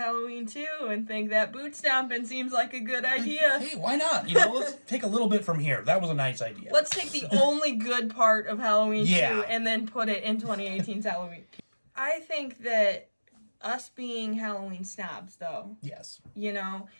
2 and think that boot stomping seems like a good idea? Hey, why not? You know, let's take a little bit from here. That was a nice idea. Let's take the only good part of Halloween 2 and then put it in 2018's Halloween. I think that us being Halloween snobs, though. Yes. You know,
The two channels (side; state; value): both; inverted; correlation -1.00